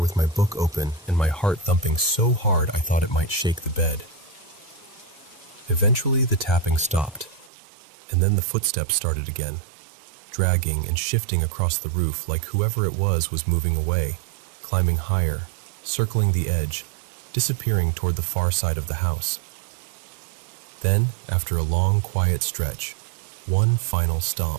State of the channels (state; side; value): drops out; left; at 7.5 s